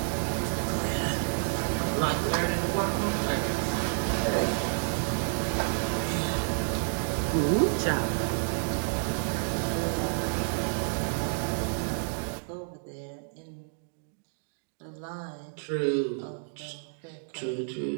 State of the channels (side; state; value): left; silent; digital silence